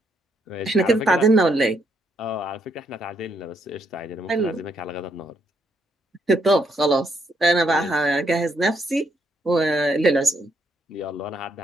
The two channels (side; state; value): both; normal; correlation 0.74